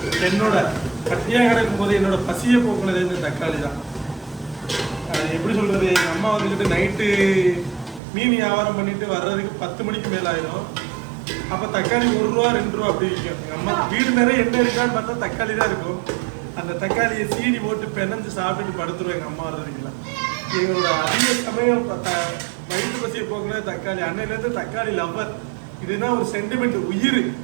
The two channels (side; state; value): left; drops out; at 8.0 s